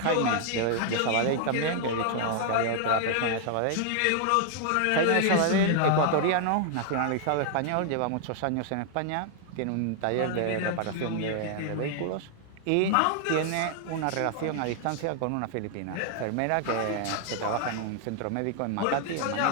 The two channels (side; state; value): both; different; correlation 0.00